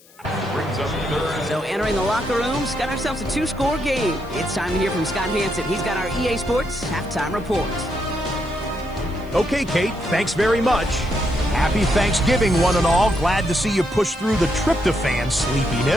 Brings up 3rd. So entering the locker rooms, got ourselves a 2-score game. It's time to hear from Scott Hanson. He's got our EA Sports halftime report. Okay, Kate, thanks very much. Happy Thanksgiving, one and all. Glad to see you push through the tryptophan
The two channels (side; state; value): left; noise; hiss, 27 dB below the sound